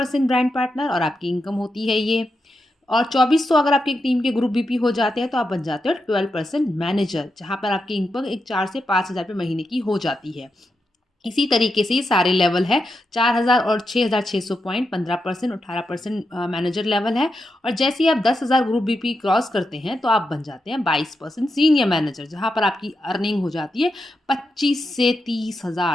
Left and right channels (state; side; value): normal; both; correlation 0.86